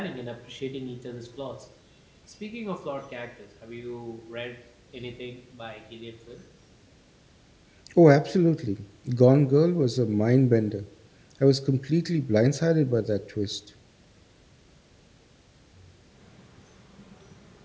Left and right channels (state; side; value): identical; both; correlation 1.00